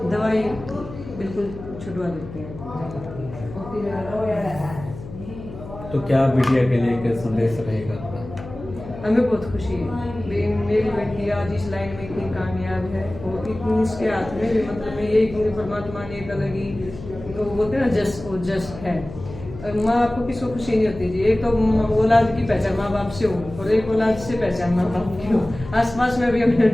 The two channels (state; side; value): noise; left; hum, 13 dB below the sound